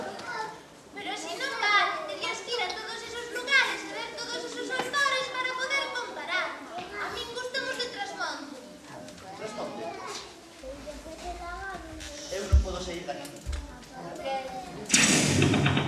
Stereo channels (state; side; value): identical; both; correlation 1.00